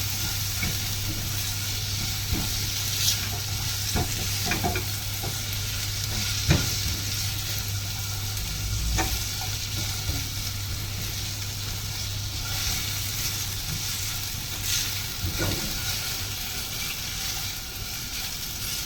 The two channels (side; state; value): both; identical; correlation 1.00